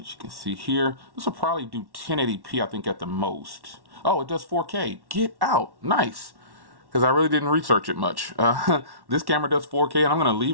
you can see here, this will probably do 1080p, I think, at the most. Oh, it does 4K. Get out. Nice. Because I really didn't research it much. This camera does 4K, and I'm going to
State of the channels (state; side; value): late; left; 1.1 ms